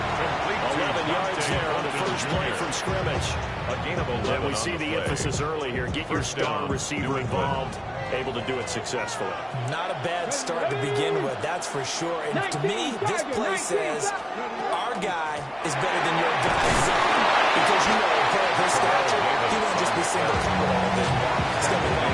11 yards there on the first play from scrimmage. And we see the emphasis early here. Get your star receiver involved. Able to do it successfully. Not a bad start to begin with, that's for sure. And to me, this play says our guy is better than your guy. Because you know, a player of his stature, he won't just be single-covered all day long. He's going to be on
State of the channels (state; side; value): identical; both; correlation 1.00